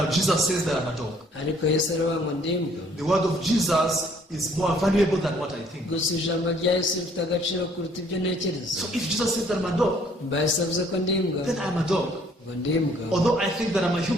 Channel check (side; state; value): both; normal; correlation 0.61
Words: Jesus says that I'm a dog. Ariko Yesu aravuga ngo ndi imbwa. The word of Jesus is more valuable than what I think. Gusa ijambo rya Yesu rifite agaciro kuruta ibyo ntekereza. So if Jesus says that I'm a dog, Mba Yesu avuze ko ndi imbwa, then I'm a dog. ngo ndi imbwa. Although I think that I'm a